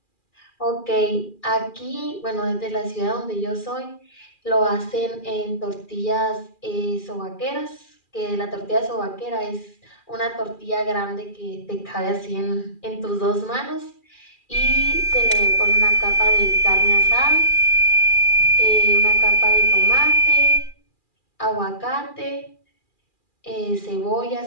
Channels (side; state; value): right; late; 2.4 ms